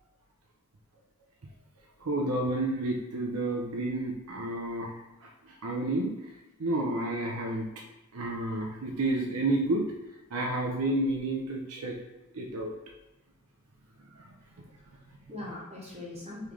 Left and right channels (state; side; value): normal; both; correlation 0.30